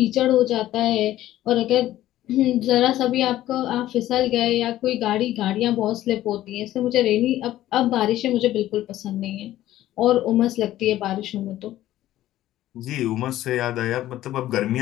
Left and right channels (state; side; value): quieter; right; 14.0 dB